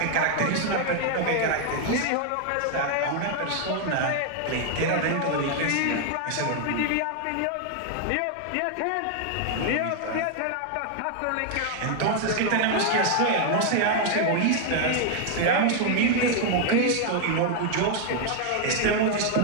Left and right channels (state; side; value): different; both; correlation 0.00